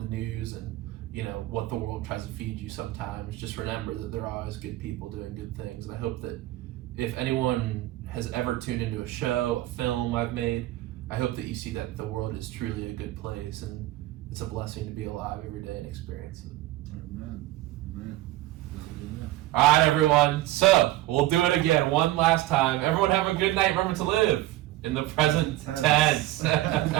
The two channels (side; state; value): left; quieter; 16.1 dB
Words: news and you know what the world tries to feed you, sometimes just remember that there are always good people doing good things. And I hope that if anyone has ever tuned into a show, a film I've made, I hope that you see that the world is truly a good place, and it's a blessing to be alive every day and experience it. Amen. All right, everyone. So we'll do it again one last time. Everyone have a good night. Remember to live in the present tense.